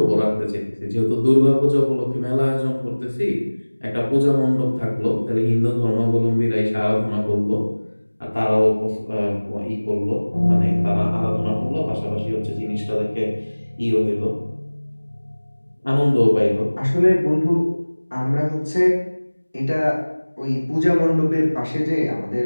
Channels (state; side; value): inverted; both; correlation -1.00